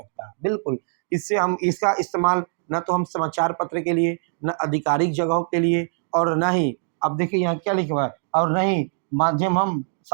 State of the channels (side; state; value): left; silent; digital silence